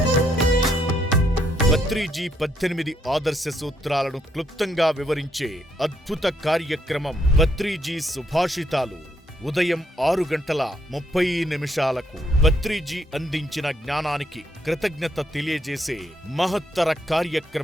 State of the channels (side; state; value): both; normal; correlation 0.74